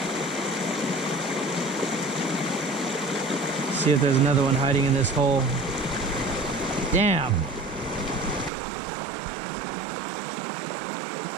See if there's another one hiding in this hole. Damn.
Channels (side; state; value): left; drops out; at 8.5 s